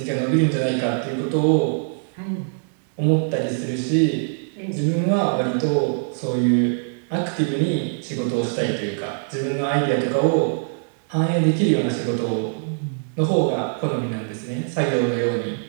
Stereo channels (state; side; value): silent; left; digital silence